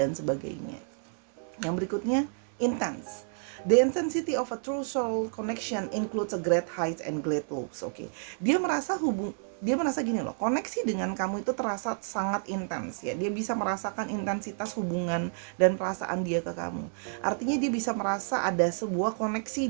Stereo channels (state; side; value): silent; left; 58 dB below the other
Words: sebagainya. Yang berikutnya, intense. The intensity of a true soul connection includes a great heights and great lows. Oke. Dia merasa gini loh, koneksi dengan kamu itu terasa sangat intens ya. Dia bisa merasakan intensitas hubungan dan perasaan dia ke kamu. Artinya dia bisa merasa ada sebuah koneksi